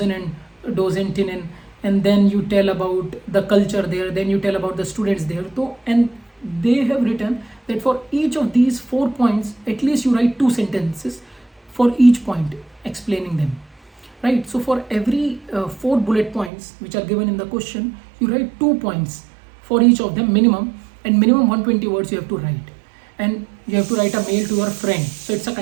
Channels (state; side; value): drops out; left; at 16.5 s